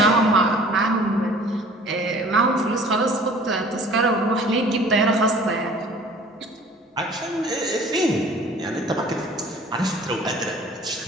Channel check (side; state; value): both; normal; correlation 0.49